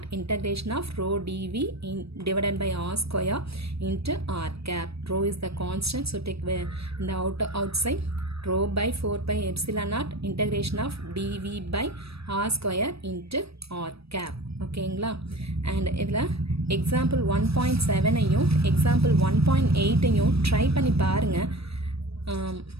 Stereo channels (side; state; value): left; late; 0.78 ms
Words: integration of rho dV divided by R square into R cap. Rho is the constant, so take the outside rho by 4 pi epsilon naught integration of dV by R square into R cap. ஓகேங்களா. And இதில் example 1.7ஐயும் example 1.8ஐயும் try பண்ணி பாருங்கள்.